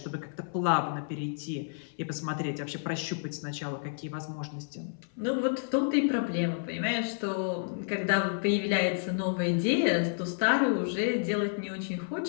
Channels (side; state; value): right; silent; 58 dB below the other